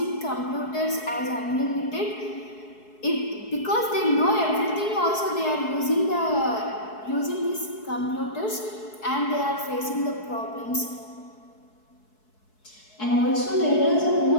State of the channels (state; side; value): late; right; 4.7 ms